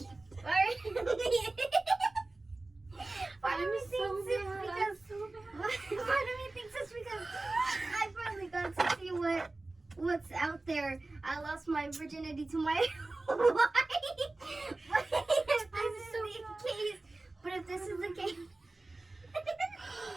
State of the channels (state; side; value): quieter; left; 3.1 dB